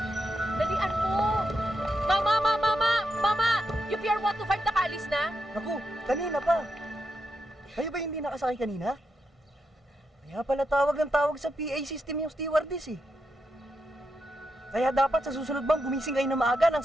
Dalian mo! Mama! Mama! Mama! Mama! Yung PR 125 nakaalis na? Naku, kanina pa. Kayo ba hindi nakasakay kanina? Kaya pala tawag ng tawag sa PA system yung stewardess eh. Kaya dapat sa susunod bang gumising kayo na maaga nang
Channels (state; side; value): normal; both; correlation 0.84